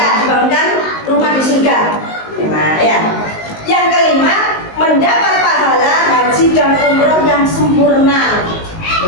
Dibangunkan rumah di surga. Enak, ya. Yang kelima, mendapat pahala haji dan umroh yang sempurna.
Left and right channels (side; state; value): right; late; 19 ms